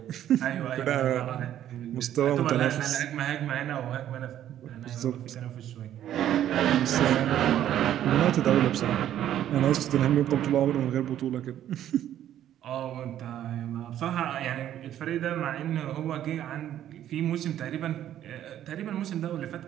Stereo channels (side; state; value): left; quieter; 11.4 dB